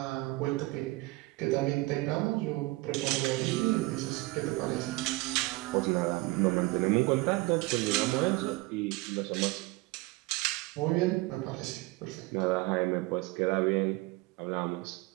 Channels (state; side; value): quieter; left; 22.3 dB